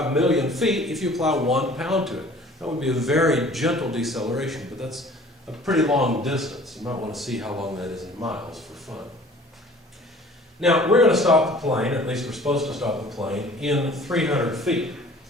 million feet if you apply 1 pound to it. That would be a very gentle deceleration, but that's a pretty long distance. You might want to see how long that is in miles for fun. Now, we're going to stop the plane, at least we're supposed to stop the plane, in 300 feet.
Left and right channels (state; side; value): normal; both; correlation 0.49